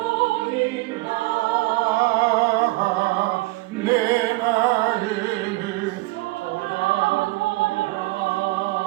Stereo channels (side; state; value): left; quieter; 20.5 dB